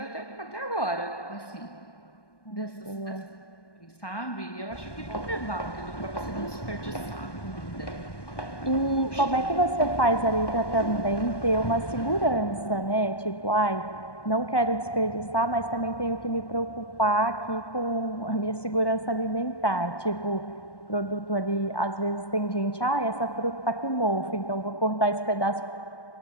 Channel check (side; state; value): right; late; 1.2 ms